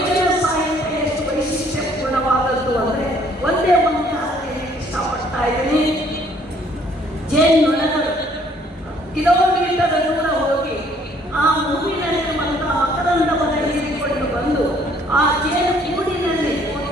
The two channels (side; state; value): both; normal; correlation 0.62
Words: ಸಾಹಿತ್ಯ ಎಷ್ಟು ವೈಶಿಷ್ಟ್ಯಪೂರ್ಣವಾದದ್ದು ಅಂದ್ರೆ ಒಂದೇ ಒಂದು ಕಾರಣ ಇಷ್ಟಪಡ್ತಾ ಇದ್ದೀನಿ. ಜೇನುನೊಣಗಳು ಕಿಲೋಮೀಟರ್ ದೂರ ಹೋಗಿ ಆ ಹೂವಿನಲ್ಲಿರುವಂತಹ ಮಕರಂದವನ್ನು ಹೀರಿಕೊಂಡು ಬಂದು ಆ ಜೇನು ಕೂಡಿನಲ್ಲಿ